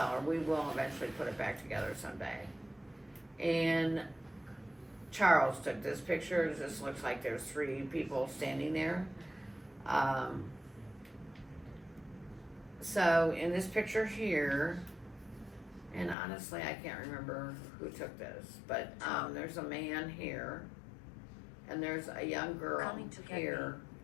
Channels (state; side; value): drops out; right; at 16.2 s